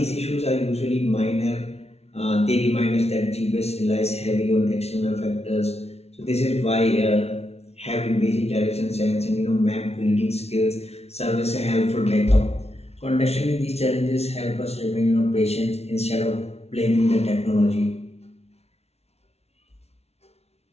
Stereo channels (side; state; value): right; late; 0.31 ms